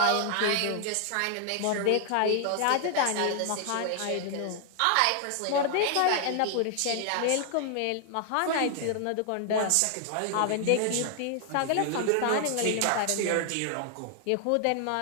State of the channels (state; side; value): different; both; correlation 0.00